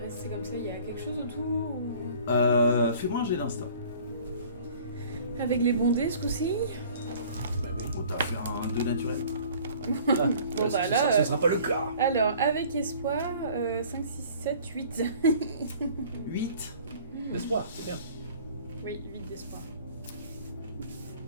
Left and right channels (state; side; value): inverted; both; correlation -0.50